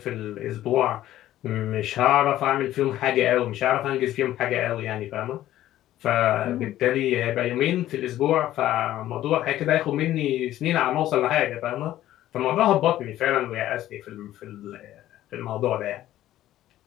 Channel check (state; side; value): quieter; right; 13.7 dB